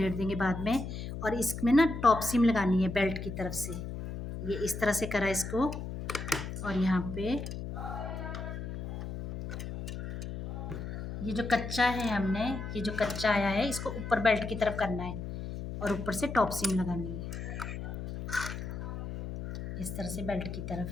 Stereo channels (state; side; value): noise; left; hum, 7 dB below the sound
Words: देंगे बाद में। और इसमें ना टॉप सीम लगानी है बेल्ट की तरफ से, ये इस तरह से करा इसको, और यहाँ पे ये जो कच्चा है हमने, ये जो कच्चा आया है इसको ऊपर बेल्ट की तरफ करना है, और ऊपर से टॉप सीम लगानी है इस तरह से बेल्ट की तरफ।